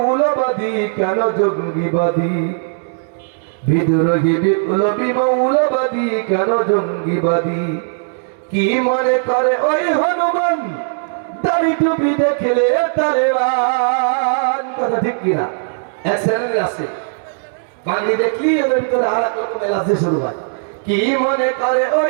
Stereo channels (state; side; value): silent; left; 66 dB below the other